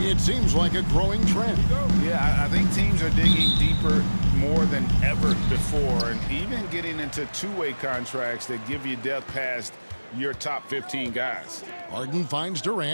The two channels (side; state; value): both; inverted; correlation -1.00